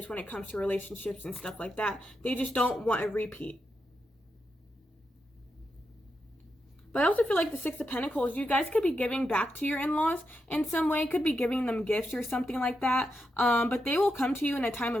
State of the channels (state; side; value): normal; both; correlation 0.85